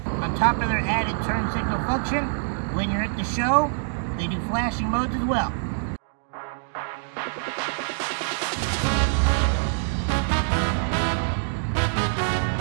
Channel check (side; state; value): left; silent; digital silence